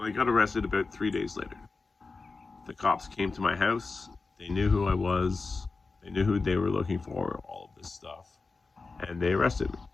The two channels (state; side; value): quieter; right; 4.0 dB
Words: I got arrested about 3 days later. The cops came to my house. They knew who I was. They knew who they were looking for, all of this stuff. And they arrested me.